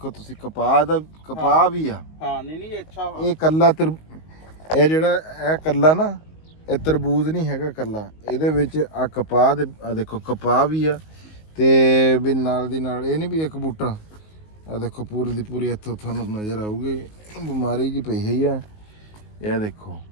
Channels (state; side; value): late; right; 19 ms